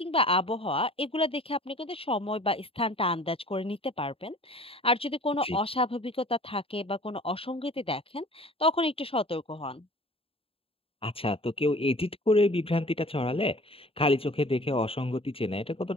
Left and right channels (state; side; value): late; right; 0.27 ms